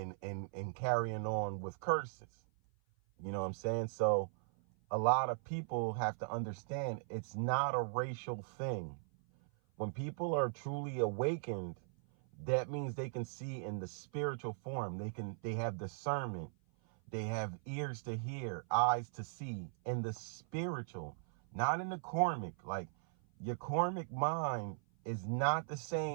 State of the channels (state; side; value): silent; left; 52 dB below the other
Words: carrying on with curses. You know what I'm saying? So a lot of people have to understand it's not a racial thing. When people are truly awakened, that means they can see in the spiritual form. They have discernment. They have ears to hear, eyes to see in the spiritual, not in the karmic. Like your karmic mind is not the